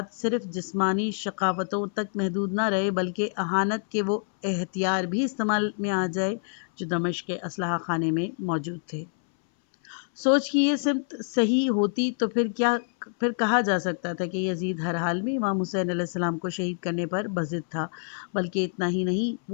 صرف جسمانی شقاوتوں تک محدود نہ رہے بلکہ اہانت کے وہ ہتھیار بھی استعمال میں آ جائے جو دمشق کے اسلحہ خانے میں موجود تھے۔ سوچ کی یہ سمت صحیح ہوتی تو پھر کہا جا سکتا تھا کہ یزید ہر حال میں امام حسین علیہ السلام کو شہید کرنے پر بضد تھا، بلکہ اتنا ہی نہیں،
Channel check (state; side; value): silent; right; 60 dB below the other